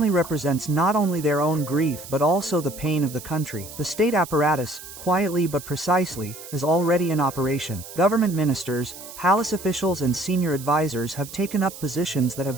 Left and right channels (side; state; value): right; noise; hiss, 14 dB below the sound